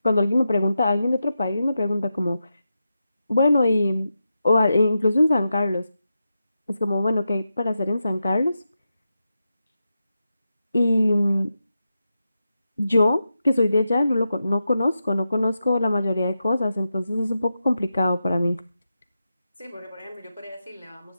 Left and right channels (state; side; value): inverted; both; correlation -0.89